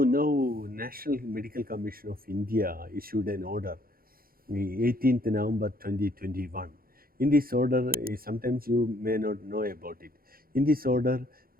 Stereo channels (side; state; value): left; late; 0.43 ms